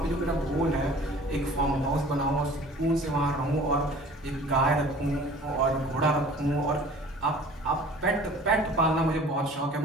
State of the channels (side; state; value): both; normal; correlation 0.47